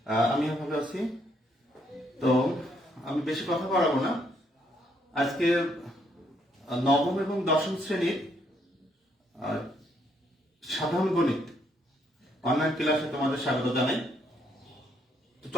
আমিও ভালো আছি। তো আমি বেশি কথা বাড়াবো না। আজকে নবম এবং দশম শ্রেণীর সাধারণ গণিত অনলাইন ক্লাসে তোমাদের স্বাগত জানাই। তো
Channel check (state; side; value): normal; both; correlation 0.72